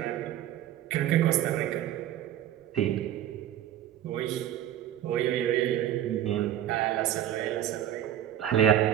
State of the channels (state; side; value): quieter; left; 11.5 dB